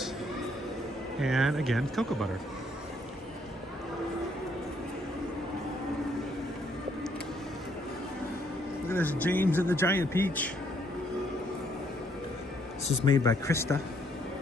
and again cocoa butter. Look at this James and the Giant Peach. This is made by Krista.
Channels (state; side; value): normal; both; correlation 0.69